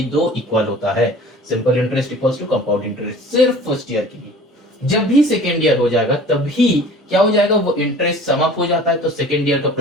दो इक्वल होता है, simple interest equals to compound interest, सिर्फ फर्स्ट ईयर के लिए। जब भी सेकेंड ईयर हो जाएगा तभी क्या हो जाएगा, वो इंटरेस्ट समाप्त हो जाता है, तो सेकेंड ईयर का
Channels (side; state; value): both; normal; correlation 0.45